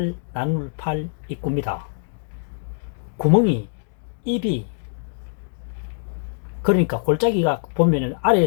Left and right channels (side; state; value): right; silent; digital silence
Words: 입구입니다. 구멍이 입이 그러니까 골짜기가 보면은